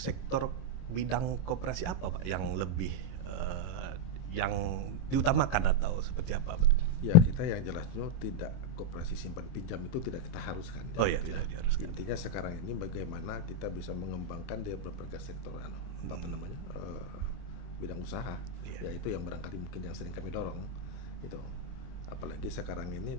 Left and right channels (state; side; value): late; right; 23 ms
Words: bidang koperasi apa, Pak, yang lebih yang diutamakan atau seperti apa, Pak? Ya, kita yang jelasnya tidak koperasi simpan pinjam itu tidak kita haruskan. Oh ya, tidak diharuskan. Intinya sekarang ini bagaimana kita bisa mengembangkan di berbagai sektor bidang usaha, Iya. yaitu yang barangkali mungkin yang sering kami dorong itu. Apalagi sekarang